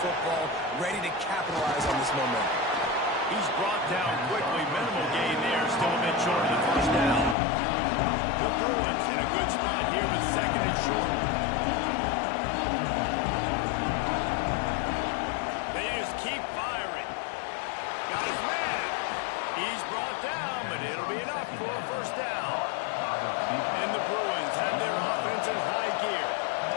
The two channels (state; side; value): drops out; right; at 7.4 s